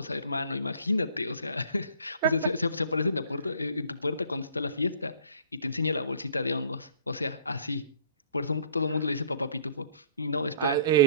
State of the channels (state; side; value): inverted; both; correlation -0.53